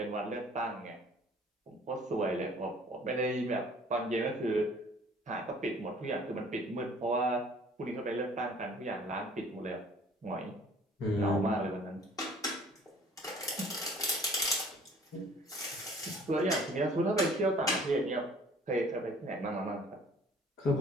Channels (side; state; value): both; normal; correlation 0.53